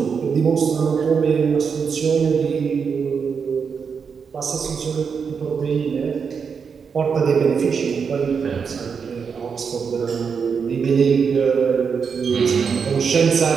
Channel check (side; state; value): left; quieter; 6.1 dB